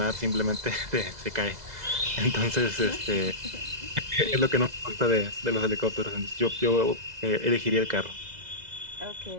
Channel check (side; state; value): left; late; 2.0 ms